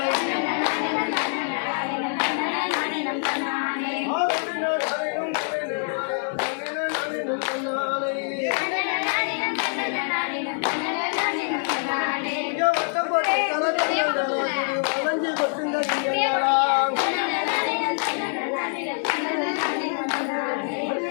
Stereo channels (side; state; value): right; silent; 58 dB below the other